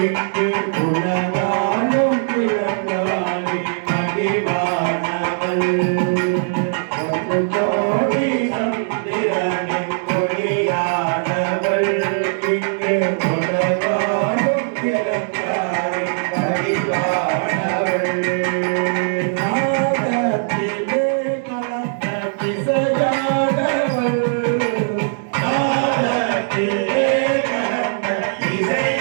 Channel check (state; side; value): silent; left; digital silence